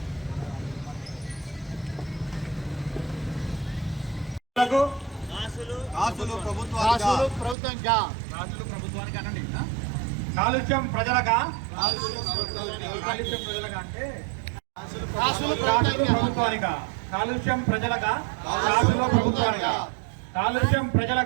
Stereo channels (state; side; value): drops out; left; at 7.6 s